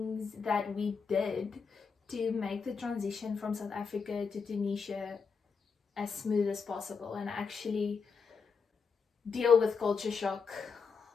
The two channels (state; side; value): quieter; right; 5.4 dB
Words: that we did to make the transition from South Africa to Tunisia as smooth as possible and actually deal with culture shock